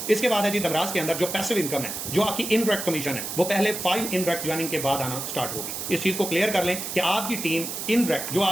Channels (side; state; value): right; noise; hiss, 5 dB below the sound